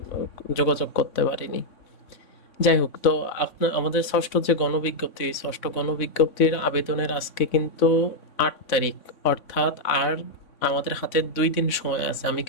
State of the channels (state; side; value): late; right; 3.6 ms